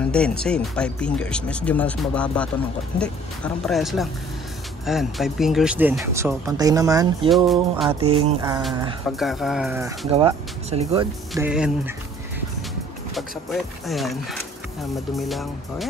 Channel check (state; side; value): normal; both; correlation 0.55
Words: din, same. 5 fingers. Medyo mas mababa ito ng hindi, parang parehas lang. Ayan, 5 fingers din. So, pantay naman yung ating pagkakagawa sa likod. Then, pag sa puwet, ayan, madumi lang. O